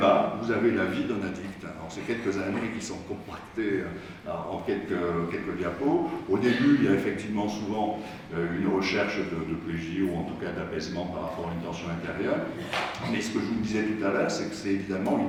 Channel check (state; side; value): identical; both; correlation 1.00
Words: vous avez la vie d'un addict. Alors c'est quelques années qui sont compactées en quelques diapos. Au début, il y a effectivement souvent une recherche de plaisir ou en tout cas d'apaisement par rapport à une tension intérieure. Mais ce que je vous disais tout à l'heure, c'est que c'est évidemment